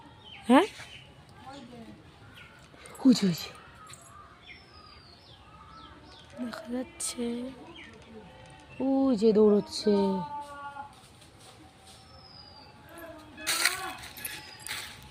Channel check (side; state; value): both; identical; correlation 1.00